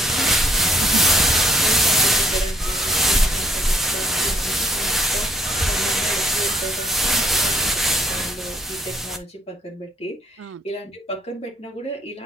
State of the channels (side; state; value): both; normal; correlation 0.63